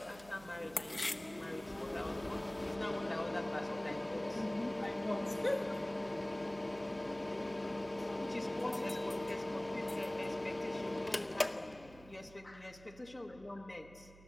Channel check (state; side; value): noise; right; hum, 20 dB below the sound